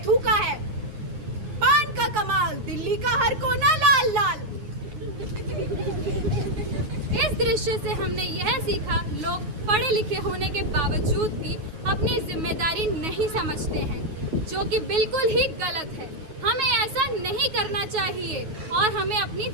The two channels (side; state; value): left; late; 9.4 ms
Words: थूका है। पान का कमाल, दिल्ली का हर कोना लाल लाल। इस दृश्य से हमने यह सीखा, लोग पढ़े लिखे होने के बावजूद भी अपनी जिम्मेदारी नहीं समझते हैं, जो कि बिल्कुल ही गलत है। हमें ऐसा नहीं करना चाहिए और हमें अपनी